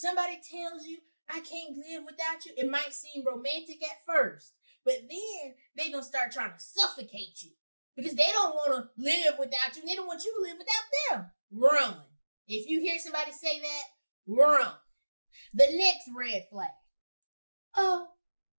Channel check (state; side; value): inverted; both; correlation -1.00